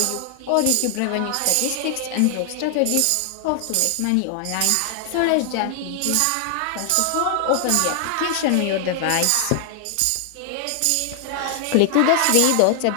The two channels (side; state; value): both; different; correlation 0.00